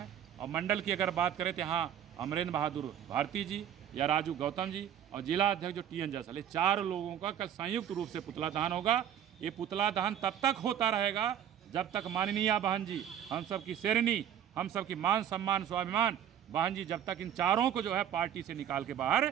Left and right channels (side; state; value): left; quieter; 9.9 dB